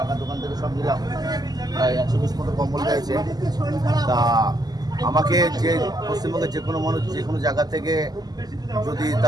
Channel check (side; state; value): left; late; 0.19 ms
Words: দোকান থেকে সব নিলাম। প্রায় 120 মতো কম্বল রয়েছে। তা আমাকে যে পশ্চিমবঙ্গের যে কোনো মানুষ যে কোনো জায়গা থেকে যদি